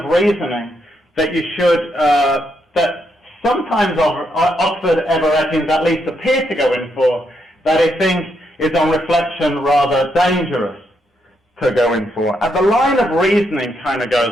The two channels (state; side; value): normal; both; correlation 0.78